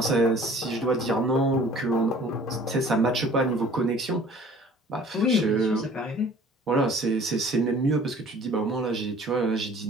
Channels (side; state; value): both; normal; correlation 0.50